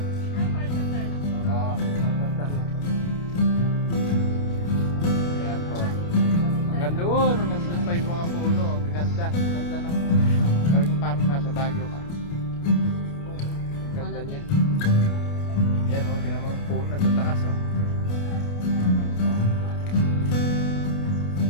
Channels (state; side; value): late; right; 29 ms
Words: Oo, tantan. Ayan po. Hanggang doon pa yung mga puno. Ang ganda. Ganda ng... Talagang parang nasa Baguio ka. Ganda niya. Yan o, tinan mo yung puno. Nagtataas o.